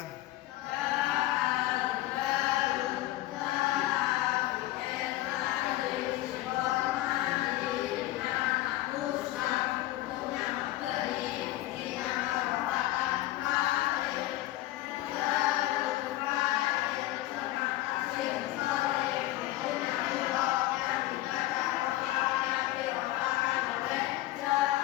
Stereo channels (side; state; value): right; quieter; 16.3 dB